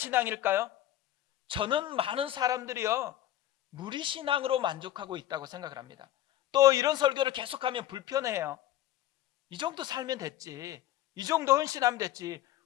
저는 많은 사람들이요, 무리신앙으로 만족하고 있다고 생각을 합니다. 또 이런 설교를 계속하면 불편해요. 이 정도 살면 됐지, 이 정도 헌신하면 됐지,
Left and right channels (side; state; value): right; quieter; 13.1 dB